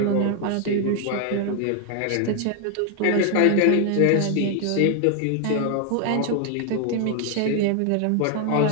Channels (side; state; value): both; different; correlation 0.00